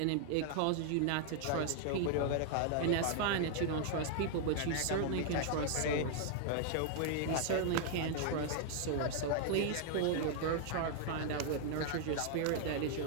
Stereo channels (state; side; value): different; both; correlation -0.01